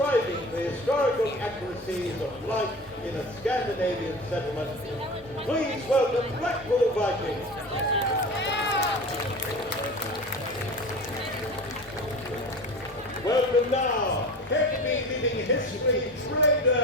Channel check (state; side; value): normal; both; correlation 0.33